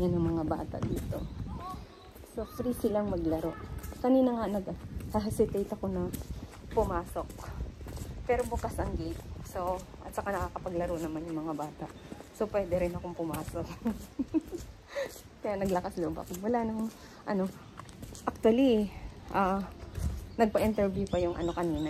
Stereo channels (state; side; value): identical; both; correlation 1.00